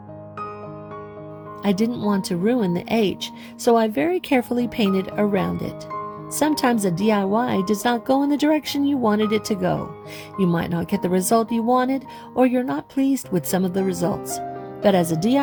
I didn't want to ruin the H, so I very carefully painted around it. Sometimes a DIY does not go in the direction you wanted it to go. You might not get the result you wanted, or you're not pleased with some of the results. But as a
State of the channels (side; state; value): both; identical; correlation 1.00